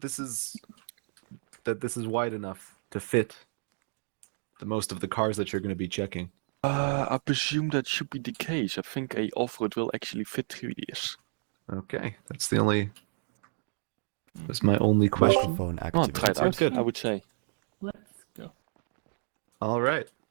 this is wide enough to fit the most of the cars that you're going to be checking? I presume that should be the case. I think a off-road will actually fit through this. Okay, that's my only question. Microphone Oh, try it activated. out, good. I would say. Let's go. All right.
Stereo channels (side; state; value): left; silent; 57 dB below the other